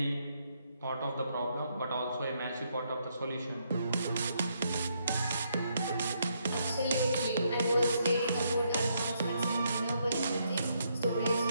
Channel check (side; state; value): both; inverted; correlation -0.75